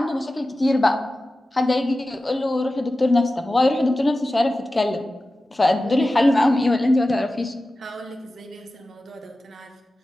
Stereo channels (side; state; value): both; normal; correlation 0.95